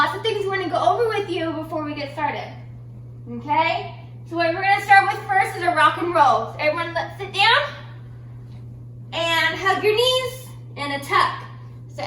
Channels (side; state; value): both; identical; correlation 1.00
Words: of things we want to go over with you before we get started. Okay? So what we're going to start with first is a rock and roll. So everyone let's sit down and hug your knees and a tuck. So